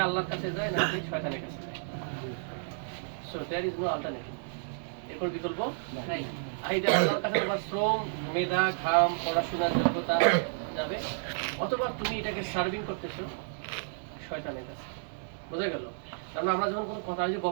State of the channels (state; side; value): silent; left; digital silence